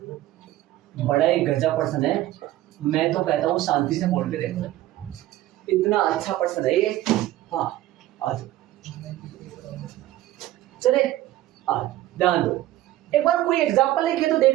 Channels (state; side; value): quieter; left; 15.0 dB